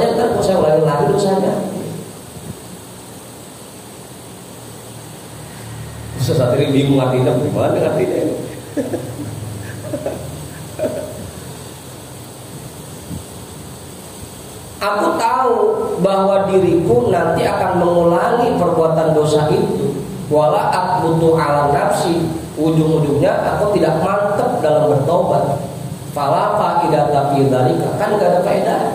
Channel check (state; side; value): identical; both; correlation 1.00